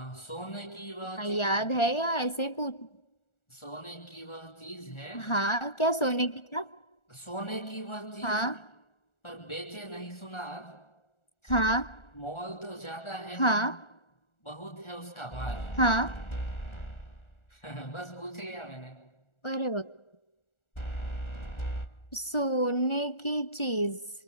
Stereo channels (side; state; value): right; late; 1.4 ms